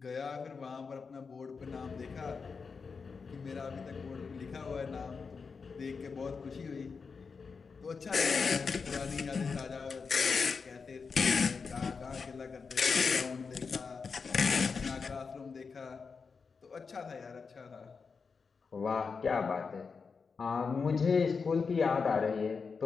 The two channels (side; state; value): right; quieter; 5.2 dB